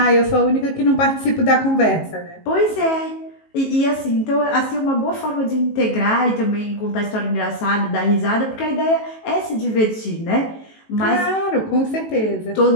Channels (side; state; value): right; late; 18 ms